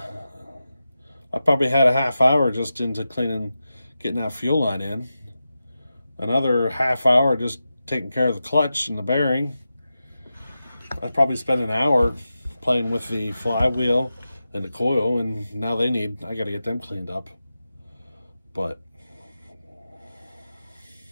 probably had a half hour just into cleaning, getting that fuel line in. Another half hour just taking care of the clutch and the bearing. I probably spent an hour playing with the flywheel and the coil, and now I got to get them cleaned up. But,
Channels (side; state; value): both; inverted; correlation -0.92